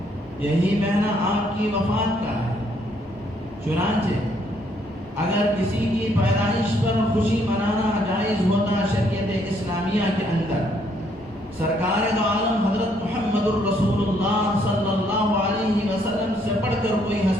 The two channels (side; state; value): both; normal; correlation 0.69